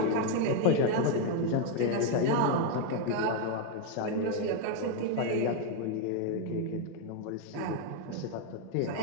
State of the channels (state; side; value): different; both; correlation 0.01